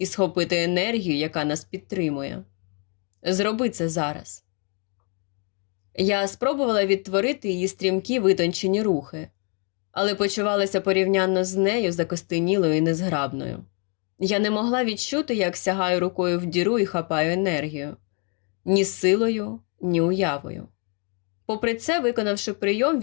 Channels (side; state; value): right; quieter; 37.7 dB